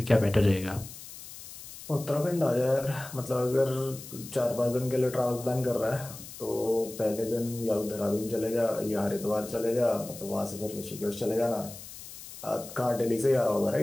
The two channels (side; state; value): left; noise; hiss, 14 dB below the sound